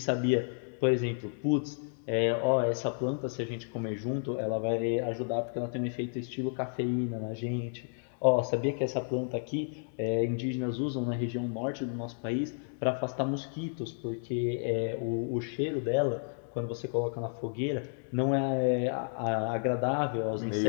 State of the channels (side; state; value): right; silent; digital silence